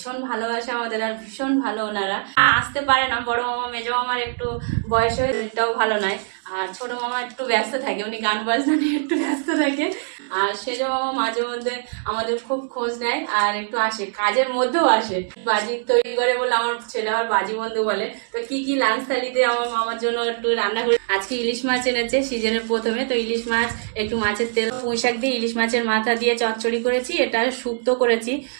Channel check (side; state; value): left; silent; digital silence